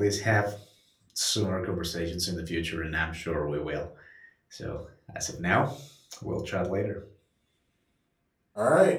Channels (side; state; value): both; identical; correlation 1.00